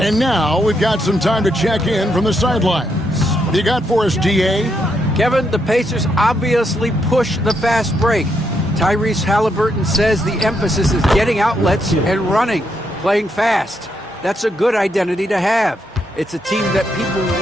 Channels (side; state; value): both; normal; correlation 0.78